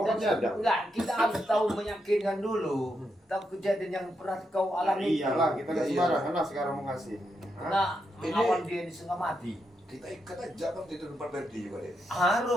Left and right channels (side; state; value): both; normal; correlation 0.83